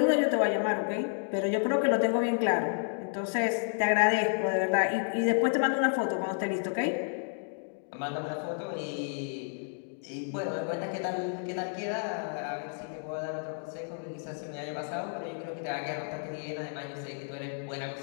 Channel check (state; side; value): silent; right; 57 dB below the other